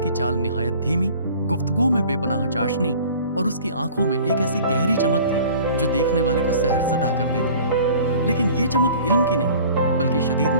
चाल निहायत धीमी, गुफ्तगू में बेपनाह चाशनी और उसकी आंखों में एक ऐसी गहरी चमक थी जो देखने वाले को सहरज़दा कर देती। लेकिन ये चमक इल्म की नहीं बल्कि शदीद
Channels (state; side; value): inverted; both; correlation -0.47